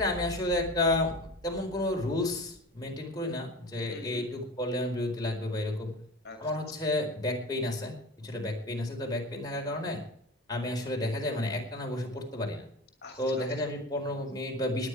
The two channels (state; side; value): normal; both; correlation 0.33